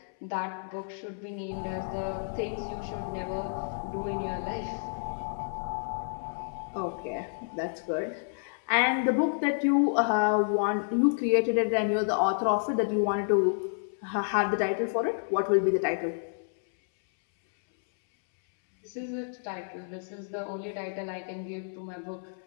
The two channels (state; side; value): silent; right; 58 dB below the other